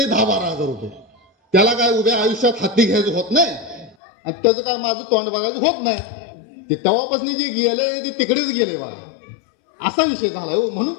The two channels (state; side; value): drops out; right; at 4.0 s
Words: 10-12 हजार रुपये. त्याला काय उभ्या आयुष्यात हत्ती घ्यायचं होत नाही आणि त्याचं काय माझं तोंड बघायचं होत नाही. ते तेव्हापासून जे गेले ते तिकडेच गेले बा. असा विषय झाला हो. म्हणून